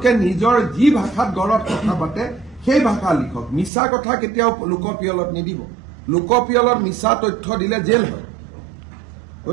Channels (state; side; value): drops out; left; at 3.7 s